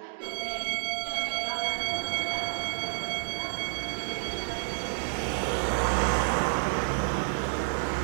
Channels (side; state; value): left; silent; digital silence